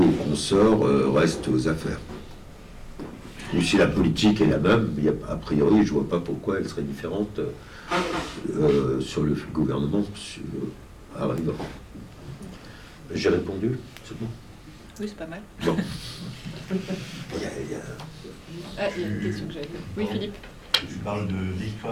ou consort reste aux affaires. Ou si la politique est la même, a priori, je ne vois pas pourquoi elle serait différente sur le gouvernement arrivant. J'ai répondu, c'est bon? Oui, c'est pas mal. Bon. Ah, il y a une question que j'avais. Oui, Philippe. Tu parles de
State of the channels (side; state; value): both; identical; correlation 1.00